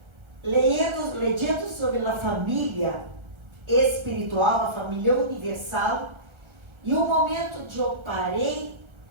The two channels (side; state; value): left; late; 1.3 ms